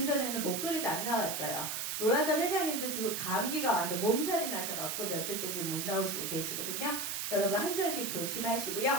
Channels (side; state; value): right; noise; hiss, 3 dB below the sound